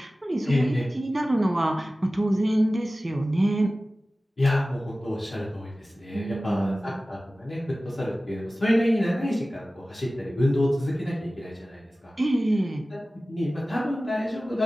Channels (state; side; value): normal; both; correlation 0.96